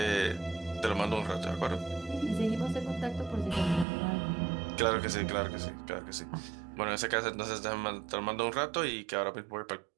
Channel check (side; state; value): left; drops out; at 3.9 s